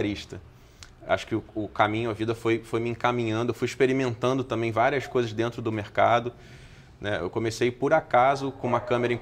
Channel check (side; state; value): both; identical; correlation 1.00